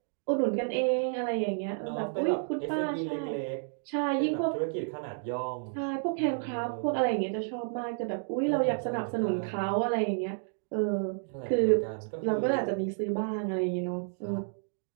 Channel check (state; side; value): silent; left; digital silence